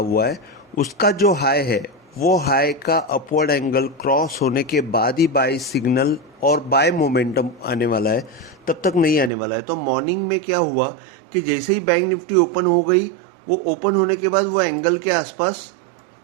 है, उसका जो हाई है वो हाई का अपवर्ड एंगल क्रॉस होने के बाद ही बाय सिग्नल और बाय मोमेंटम आने वाला है, तब तक नहीं आने वाला है। तो मॉर्निंग में क्या हुआ कि जैसे ही बैंक निफ्टी ओपन हो गई, वो ओपन होने के बाद वो एंगल के आसपास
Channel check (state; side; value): drops out; left; at 9.3 s